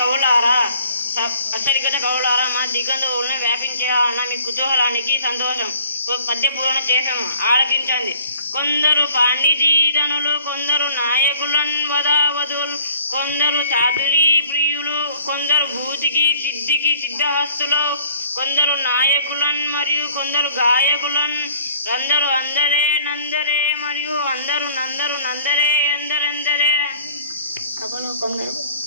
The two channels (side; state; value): both; inverted; correlation -0.53